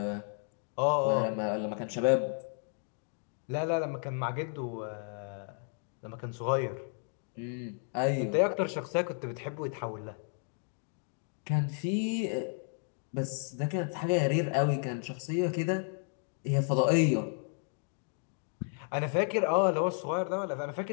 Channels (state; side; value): silent; right; 56 dB below the other